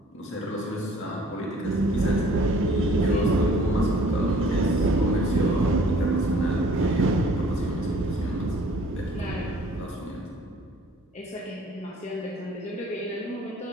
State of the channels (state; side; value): normal; both; correlation 0.54